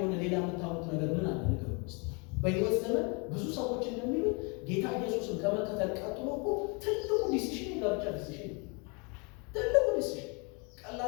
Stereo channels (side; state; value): right; quieter; 32.4 dB